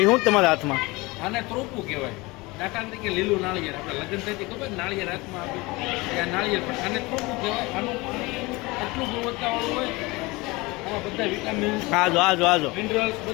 શું તમારા હાથમાં આને ત્રોપું કહેવાય. દાખલા તરીકે લીલું નાળિયેર આપણે લગ્ન થતી ખબર નાળિયેર હાથમાં આપ્યું ત્યાં નાળિયેર પણ આને ત્રોપું કહેવાય. આનું એટલું ગુણવત્તાવાળું હોય. આમાં બધા વિટામિન્સ આજો મિનરલ્સ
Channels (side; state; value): right; quieter; 23.2 dB